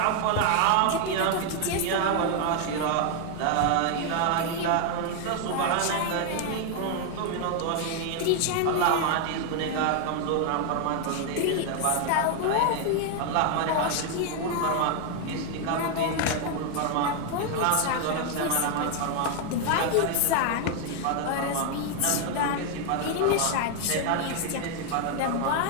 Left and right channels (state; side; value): different; both; correlation 0.00